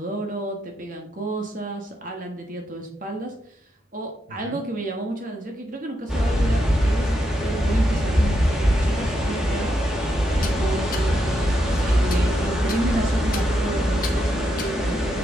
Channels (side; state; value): both; normal; correlation 0.82